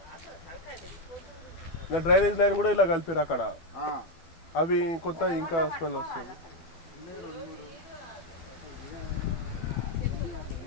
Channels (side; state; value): right; late; 12 ms